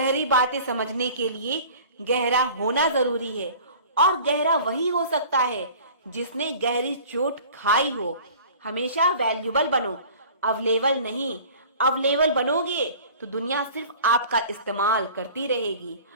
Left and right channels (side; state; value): both; inverted; correlation -0.45